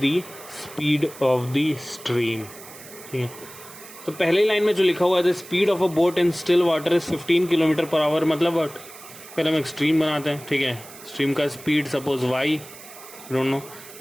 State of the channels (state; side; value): noise; right; hiss, 17 dB below the sound